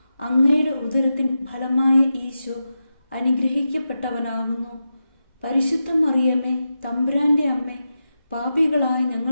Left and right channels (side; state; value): both; inverted; correlation -0.90